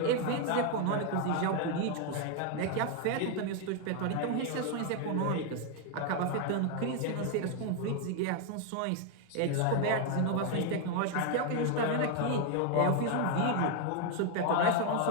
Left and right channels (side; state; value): both; different; correlation 0.01